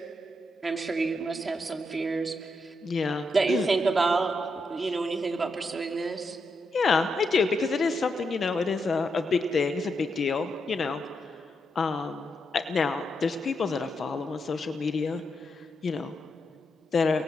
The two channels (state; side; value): normal; both; correlation 0.83